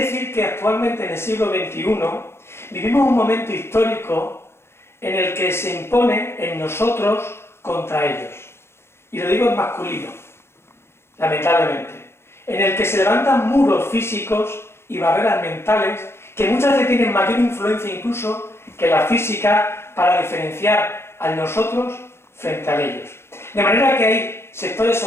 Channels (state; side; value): late; right; 0.12 ms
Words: que actualmente en el siglo XXI vivimos un momento histórico en el que se impone en nosotros contra ellos. Y lo digo en masculino, lamentablemente. En el que se levantan muros físicos y barreras mentales que muchas veces tienen mayor influencia incluso que la física para diferenciar a nosotros frente a ellos. De manera que hay sectores